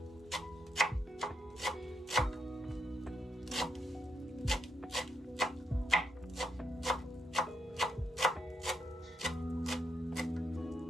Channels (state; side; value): normal; both; correlation 0.79